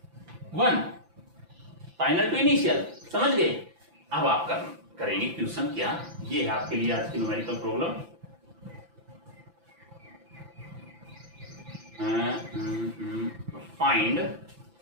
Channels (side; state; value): left; late; 5.9 ms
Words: फाइनल टू इनिशियल, समझ गए। अब आप करेंगे क्वेश्चन क्या, ये है आपके लिए आज की numerical problem, find